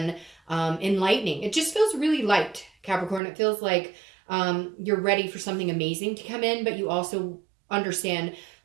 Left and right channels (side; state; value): left; drops out; at 3.2 s